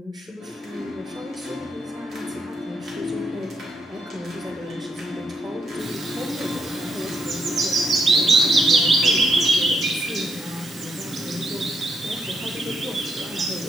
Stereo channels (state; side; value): normal; both; correlation 0.78